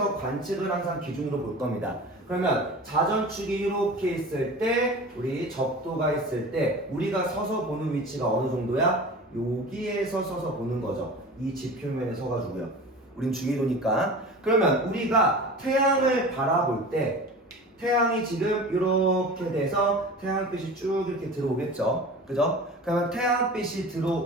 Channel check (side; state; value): both; normal; correlation 0.36